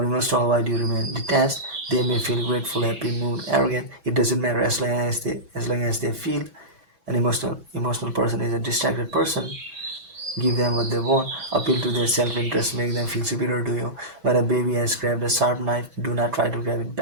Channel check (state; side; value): late; left; 6.1 ms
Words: emotional while you remain detached. They may feel grateful, happy, moved, arrogant. It doesn't matter as long as they feel. An emotional person is a distracted person. Give them what they want, appeal to their self interest, make them feel superior to you. When a baby has grabbed a sharp knife, do not try to grab it